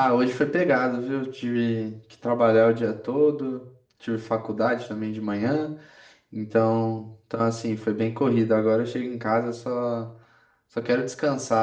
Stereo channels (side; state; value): both; identical; correlation 1.00